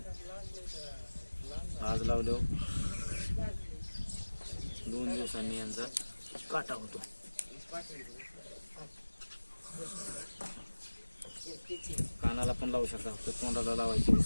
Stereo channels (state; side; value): inverted; both; correlation -1.00